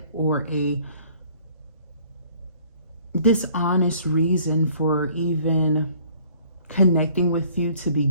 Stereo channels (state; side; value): inverted; both; correlation -0.57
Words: or a dishonest reason for even connecting with you to